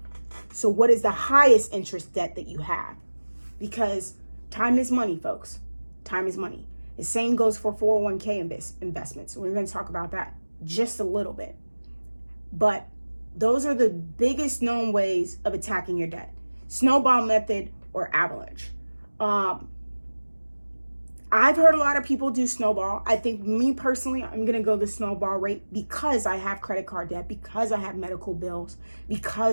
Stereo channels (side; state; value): both; inverted; correlation -1.00